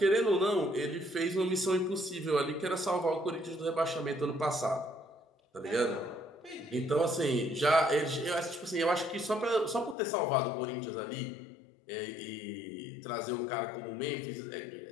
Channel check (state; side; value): drops out; right; at 10.0 s